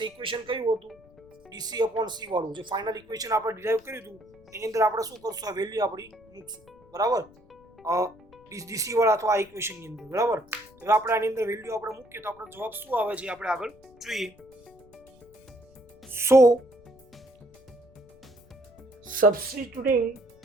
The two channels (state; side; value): noise; left; rumble, 27 dB below the sound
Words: ઇક્વેશન કયું હતું? DC upon C વાળું જે ફાઇનલ ઇક્વેશન આપણે ડિરાઈવ કર્યું હતું એની અંદર આપણે શું કરશું? આ વેલ્યુ આપણી મૂકશું. બરાબર, DC વાળા અથવા આ ઇક્વેશનની અંદર. બરાબર, હવે આપણે આની અંદર વેલ્યુ આપણે મૂકીએ તો આપણો જવાબ શું આવે છે આપણે આગળ જોઈએ. સો substituting